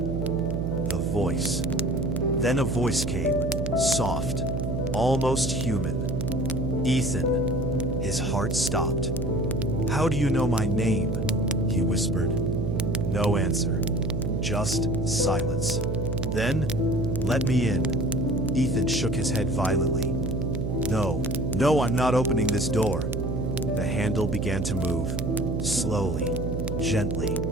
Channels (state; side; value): noise; right; hum, 1 dB below the sound